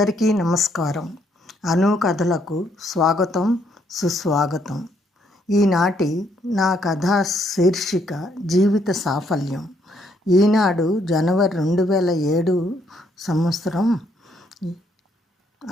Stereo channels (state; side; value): normal; both; correlation 0.71